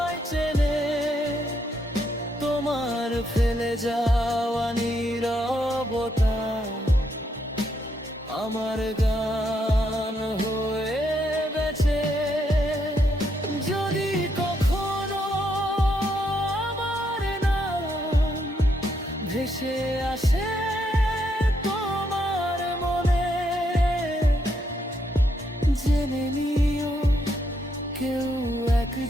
চেনে। তোমার ফেলে যাওয়া নীরবতা আমার গান হয়ে বেঁচে। যদি কখনো আমার নাম ভেসে আসে তোমার মনে, জেনে নিও কেউ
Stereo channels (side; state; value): both; normal; correlation 0.77